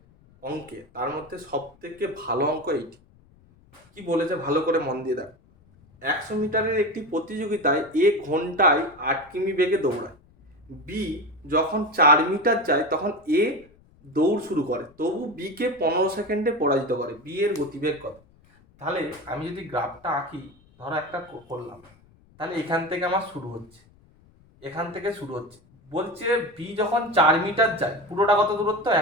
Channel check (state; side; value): noise; left; rumble, 29 dB below the sound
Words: অঙ্কে, তার মধ্যে সব থেকে ভালো অঙ্ক এইটি। কি বলেছে ভালো করে মন দিয়ে দেখো। 100 মিটারের একটি প্রতিযোগিতায় এ ঘন্টায় 8 কিমি বেগে দৌড়ায়। বি যখন 4 মিটার যায় তখন এ দৌড় শুরু করে, তবু বি কে 15 সেকেন্ডে পরাজিত করে। বি এর গতিবেগ কত? তাহলে আমি যদি গ্রাফটা আঁকি, ধরো একটা করলাম, তাহলে এখান থেকে আমার শুরু হচ্ছে, এখান থেকে শুরু হচ্ছে। বলছে বি যখন 4 মিটার যায়, পুরোটা কত দূরত্ব?